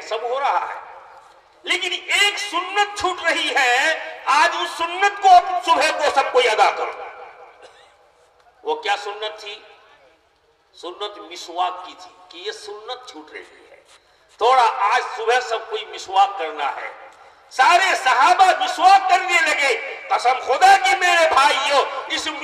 सब हो रहा है। लेकिन एक सुन्नत छूट रही है। आज उस सुन्नत को सुबह को सब कोई अदा करो। वो क्या सुन्नत थी? सुन्नत मिसवाक की थी कि ये सुन्नत छूट रही है, थोड़ा आज सुबह सब कोई मिसवाक करना है। सारे सहाबा मिसवाक करने लगे। कसम खुदा की मेरे भाइयों, इस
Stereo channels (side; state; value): both; identical; correlation 1.00